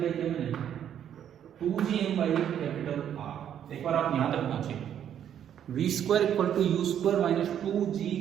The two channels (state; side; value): quieter; left; 9.7 dB